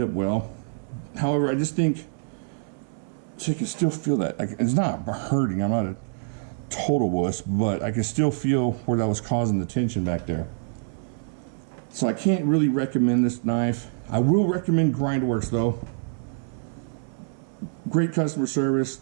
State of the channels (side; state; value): left; silent; 61 dB below the other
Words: up well. However, I just think, so you can still feel that. Like, it's not hurting. I'm not a total wuss, but I can still feel where that was causing the tension back there. So I can't really recommend this knife. I will recommend Grindworx though. Great customer service,